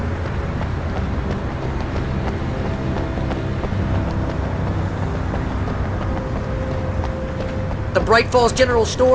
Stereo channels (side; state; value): both; identical; correlation 1.00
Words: The Bright Falls General